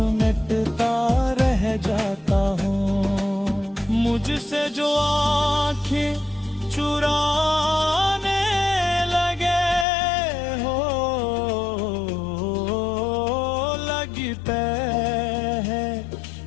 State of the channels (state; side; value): drops out; right; at 9.9 s